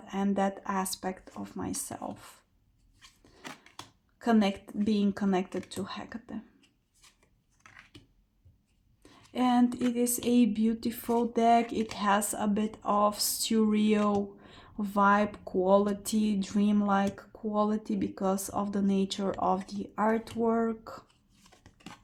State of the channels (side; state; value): both; identical; correlation 1.00